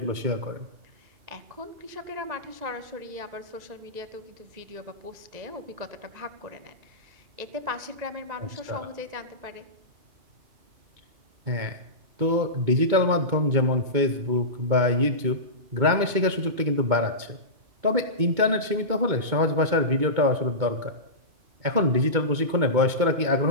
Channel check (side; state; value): left; late; 2.2 ms